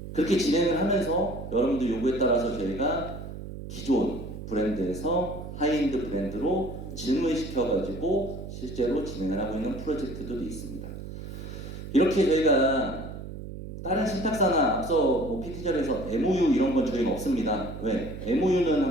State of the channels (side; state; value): right; noise; hum, 10 dB below the sound